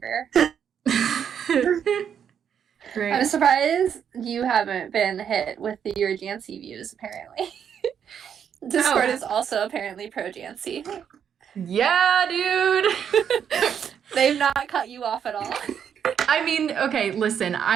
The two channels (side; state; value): left; quieter; 8.2 dB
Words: I'm Great. surprised you haven't been hit with your Jancy views, apparently. Discord Oh, is also apparently pro Jancy. yeah, dude. They've not cut you off at all. I mean, okay, listen,